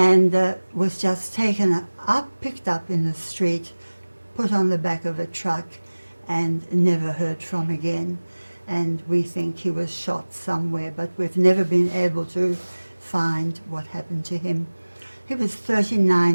was just taken up, picked up in the street, put on the back of a truck, and never heard from again. And we think he was shot somewhere, but we've never been able to find what happened to him. He was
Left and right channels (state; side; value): inverted; both; correlation -1.00